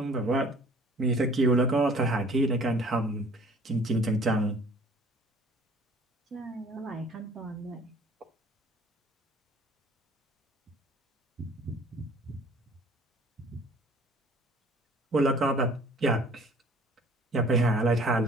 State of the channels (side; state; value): both; normal; correlation 0.52